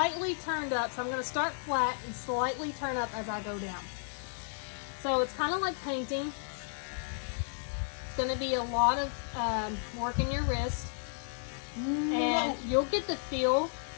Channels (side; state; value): right; silent; 56 dB below the other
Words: turned up. So I'm going to start flat and slightly turn up as I go down. So it's kind of like painting. It's going to be a lot of work in your wrist. And you'll get the feel